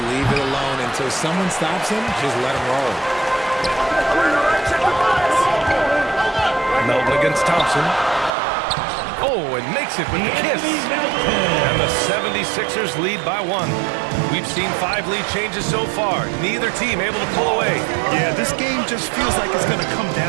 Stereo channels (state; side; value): drops out; left; at 8.3 s